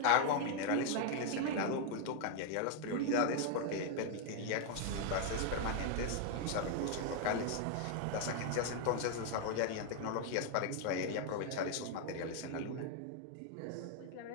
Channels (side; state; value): both; different; correlation 0.00